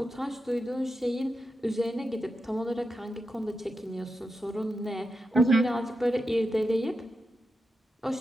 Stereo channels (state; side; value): normal; both; correlation 0.88